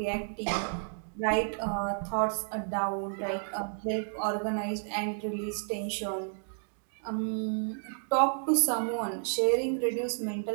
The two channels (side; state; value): left; silent; digital silence